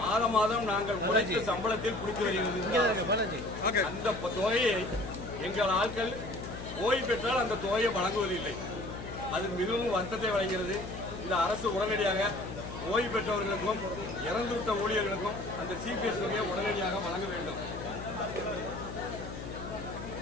மாதம் நாங்கள் உழைத்த சம்பளத்தில் பிடித்து வருகிறது. அந்த தொகையை எங்கள் ஆட்கள் ஓய்வு பெற்றால் அந்த தொகையை வழங்குவதில்லை. அது மிகவும் வருத்தத்தை வழங்குகிறது. இந்த அரசு உடனடியாக ஓய்வு பெற்றவர்களுக்கும் இறந்துவிட்ட ஊழியர்களுக்கும் அந்த சிபிஎஸ் தொகையை உடனடியாக வழங்க வேண்டும்.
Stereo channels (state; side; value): noise; left; hum, 9 dB below the sound